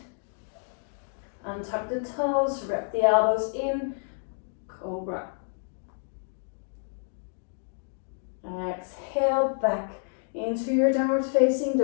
Untuck the toes, wrap the elbows in, Cobra. Exhale back into your downward facing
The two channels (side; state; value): right; silent; digital silence